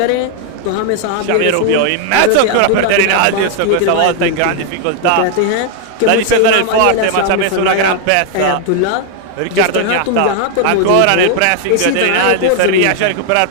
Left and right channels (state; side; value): different; both; correlation 0.00